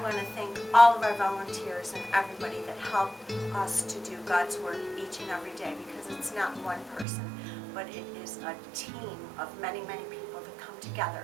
to thank all of our volunteers and everybody that help us to do God's work each and every day, because it's not one person, but it is a team of many, many people that come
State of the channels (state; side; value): drops out; left; at 7.1 s